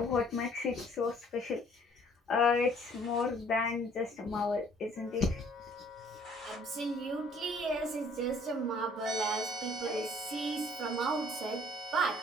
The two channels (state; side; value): normal; both; correlation 0.58